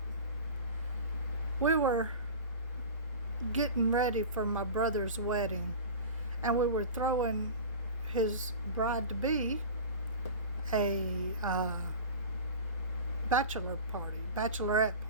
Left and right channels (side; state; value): both; inverted; correlation -0.32